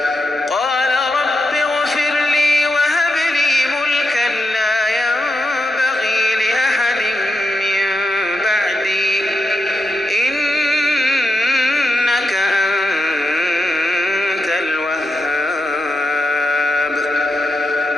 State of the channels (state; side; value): normal; both; correlation 0.86